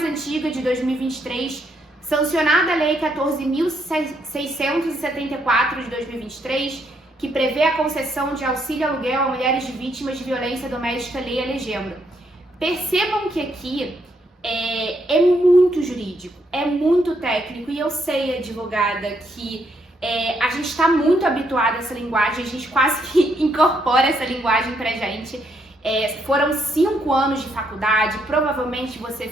antiga, de 2023, sancionada a Lei 14.674 de 2023, que prevê a concessão de auxílio aluguel a mulheres de vítimas de violência doméstica, lei a legenda. Percebam que aqui é muito jurídico, é muito técnico, e eu sei, advogada, que a gente está muito habituado a essa linguagem, a gente quase que incorpora essa linguagem pra gente. Foram 5 anos de faculdade, provavelmente você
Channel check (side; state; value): both; normal; correlation 0.74